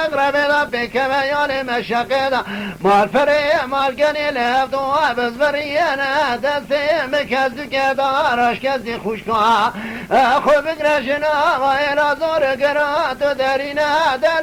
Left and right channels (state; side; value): identical; both; correlation 1.00